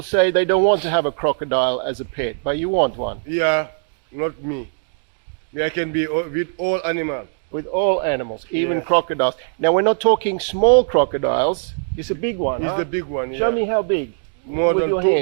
they don't want to have a crocodile as a pet, but you want one. Yeah, not me. I can be with all animals. With all animals, even crocodiles. Now we're not talking small crocodiles. It's a big one. It's the big one. Show me how big. More with than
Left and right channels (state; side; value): silent; left; digital silence